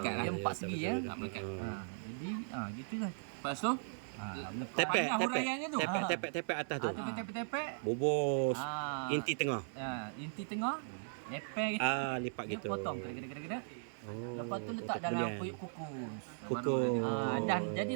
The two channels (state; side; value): silent; left; 53 dB below the other